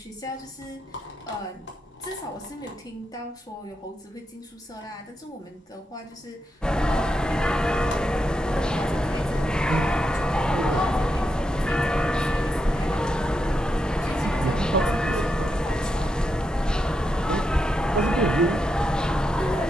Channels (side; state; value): both; normal; correlation 0.84